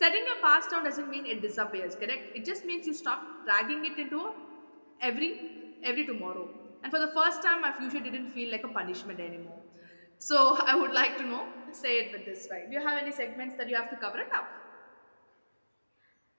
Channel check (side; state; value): both; inverted; correlation -1.00